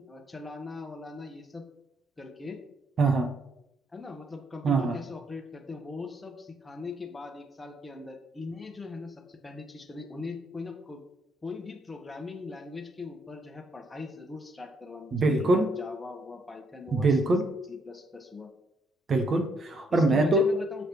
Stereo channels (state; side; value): normal; both; correlation 0.72